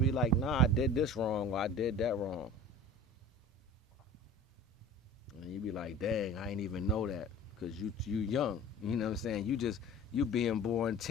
be like, nah, I did this wrong or I did that wrong. And you be like, dang, I ain't even know that because you young. You know what I'm saying? You being born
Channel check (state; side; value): normal; both; correlation 0.39